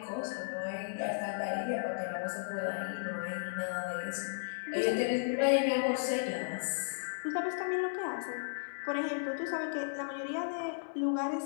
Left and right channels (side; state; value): right; silent; 55 dB below the other